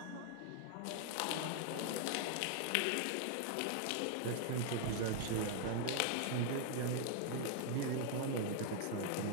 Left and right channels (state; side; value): different; both; correlation 0.00